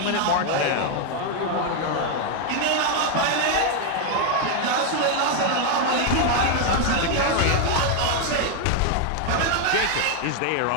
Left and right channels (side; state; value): both; different; correlation 0.01